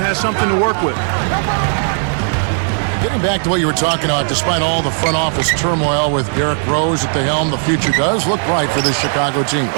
something to work with. Getting back to what you were talking about, despite all the front office turmoil with Derrick Rose at the helm, the future does look bright for this Chicago team.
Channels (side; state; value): left; silent; 64 dB below the other